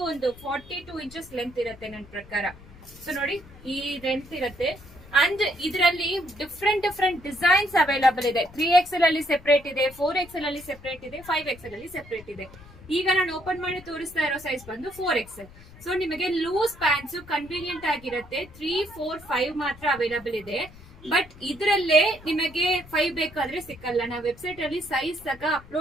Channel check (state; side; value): noise; left; rumble, 20 dB below the sound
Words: ಒಂದು 42 ಇಂಚಸ್ ಲೆಂತ್ ಇರುತ್ತೆ ನನ್ನ ಪ್ರಕಾರ. ಸೊ ನೋಡಿ ಈ ಲೆಂತ್ ಇರುತ್ತೆ. ಅಂಡ್ ಇದರಲ್ಲಿ ಡಿಫ್ರೆಂಟ್ ಡಿಸೈನ್ಸ್ ಅವೈಲಬಲ್ ಇದೆ. 3XL ಅಲ್ಲಿ ಸೆಪರೇಟ್ ಇದೆ, 4XL ಅಲ್ಲಿ ಸೆಪರೇಟ್ ಇದೆ, 5XL ಅಲ್ಲಿ ಸೆಪರೇಟ್ ಇದೆ. ಈಗ ನಾನು ಓಪನ್ ಮಾಡಿ ತೋರಿಸ್ತಾ ಇರೋ ಸೈಜ್ ಬಂದು 4XL. ಸೊ ನಿಮಗೆ ಲೂಸ್ ಪ್ಯಾಂಟ್ಸ್ ಕನ್ವೀನಿಯಂಟ್ ಆಗಿರುತ್ತೆ. 3, 4, 5 ಮಾತ್ರ ಅವೈಲಬಲ್ ಇದೆ. ಬಟ್ ಇದರಲ್ಲೇ ನಿಮಗೆ 5 ಬೇಕಾದ್ರೆ ಸಿಕ್ಕಲ್ಲ. ನಾವು ವೆಬ್ಸೈಟ್ ಅಲ್ಲಿ ಸೈಜ್ ಸಹ